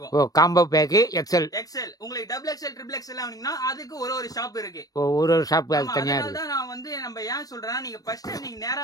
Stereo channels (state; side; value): late; right; 0.18 ms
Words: Combo pack XL. உங்களுக்கு டபுள் எக்ஸல், ட்ரிபிள் எக்ஸல் வாங்குனீங்கன்னா அதுக்கு ஒரு ஷாப் இருக்கு. ஒரு ஷாப் தனியா இருக்கு. அதனால நான் வந்து நம்ம ஏன் சொல்றேன்னா, நீங்க ஃபர்ஸ்ட் நீங்க